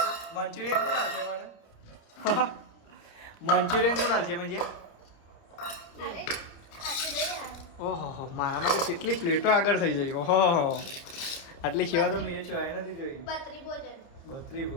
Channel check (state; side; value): late; right; 29 ms